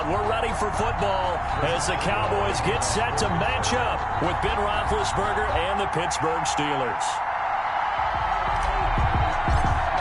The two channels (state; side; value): identical; both; correlation 1.00